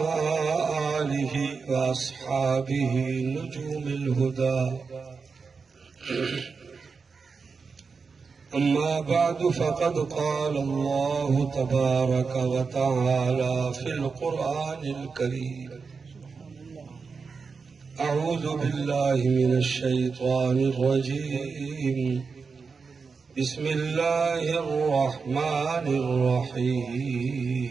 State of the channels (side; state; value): left; quieter; 5.0 dB